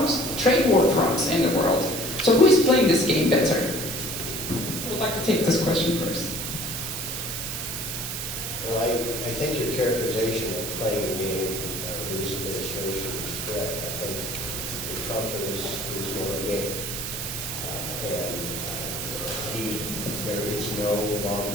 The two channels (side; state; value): right; noise; hiss, 4 dB below the sound